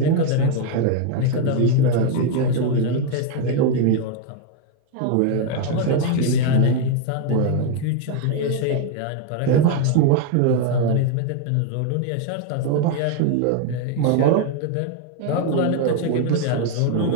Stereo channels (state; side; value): different; both; correlation 0.01